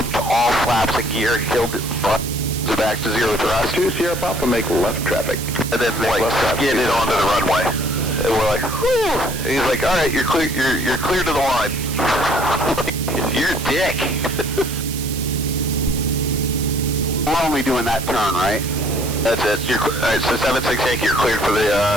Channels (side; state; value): right; noise; hiss, 9 dB below the sound